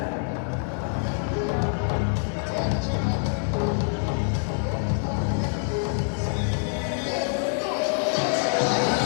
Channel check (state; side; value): silent; right; 56 dB below the other